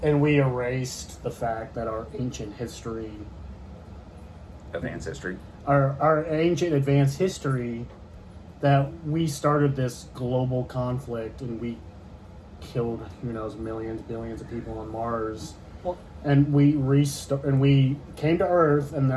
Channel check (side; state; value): both; identical; correlation 1.00